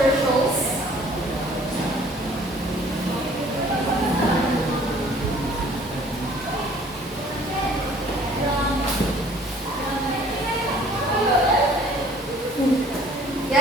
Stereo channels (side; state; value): both; normal; correlation 0.53